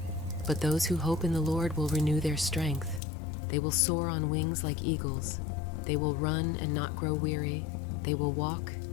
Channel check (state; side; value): drops out; right; at 3.0 s